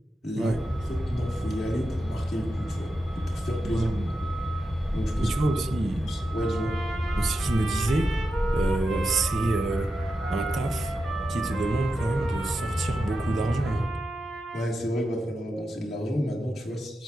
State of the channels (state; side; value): normal; both; correlation 0.89